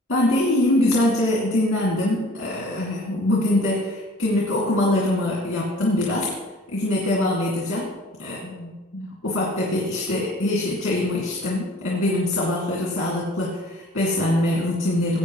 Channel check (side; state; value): both; normal; correlation 0.50